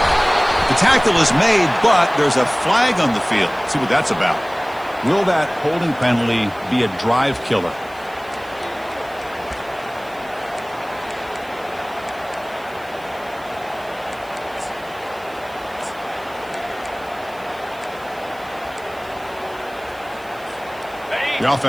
The tackle is made, but there's a flag on the field. Let's see what that's about. Will that holding penalty be a drive killer? The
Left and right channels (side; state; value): right; noise; hiss, 25 dB below the sound